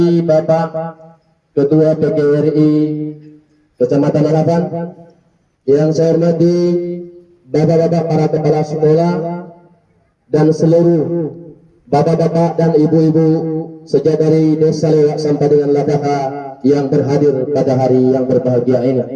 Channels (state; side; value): identical; both; correlation 1.00